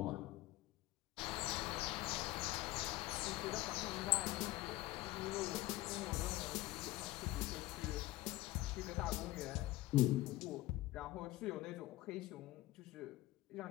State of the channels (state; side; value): quieter; right; 17.7 dB